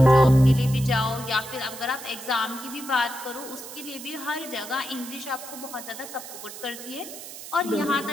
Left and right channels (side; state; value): right; noise; hiss, 13 dB below the sound